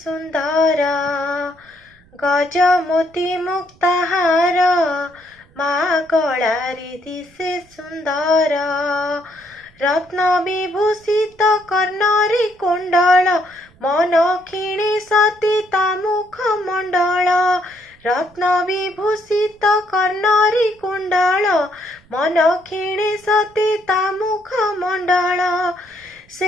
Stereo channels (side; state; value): right; noise; rumble, 29 dB below the sound